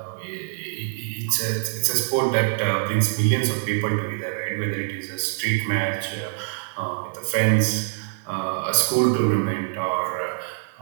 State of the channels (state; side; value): silent; left; digital silence